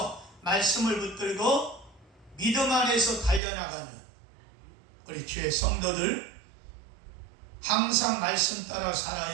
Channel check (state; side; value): drops out; left; at 3.4 s